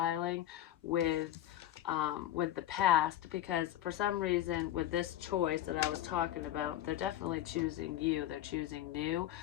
with the past, because for some reason with this choice that I was talking about, they're definitely choosing you. They're choosing new,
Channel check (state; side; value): quieter; right; 12.9 dB